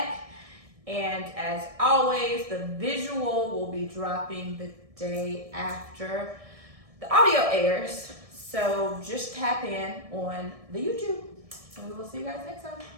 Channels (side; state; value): left; late; 1.7 ms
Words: And as always, the visual will be dropping the day after the audio airs. So just tap in on the YouTube. And we will see you guys next time.